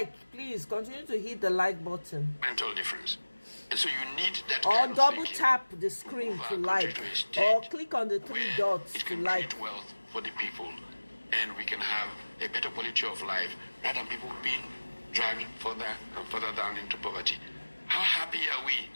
please. Continue to hit the like button. Mental difference. And so you need that or kind of double thinking tap the screen to like, or click on the three dots it to can like. create wealth for the people, and we can have a better quality of life rather than people being dragged further and further down into poverty. How happy are we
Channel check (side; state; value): both; inverted; correlation -1.00